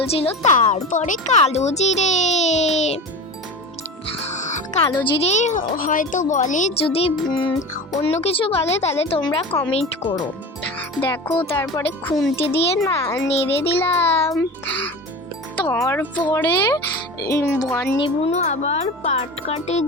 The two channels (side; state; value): both; normal; correlation 0.31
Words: তারপরে কালো জিরে হয়তো বলে, যদি অন্য কিছু বলে তাহলে তোমরা কমেন্ট করো। দেখো, তারপরে খুন্তি দিয়ে নেড়ে দিলাম। তারপরে বর্ণিবুনু আবার পাট কাটে